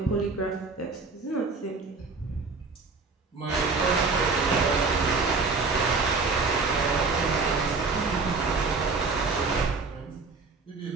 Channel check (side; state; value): left; quieter; 4.2 dB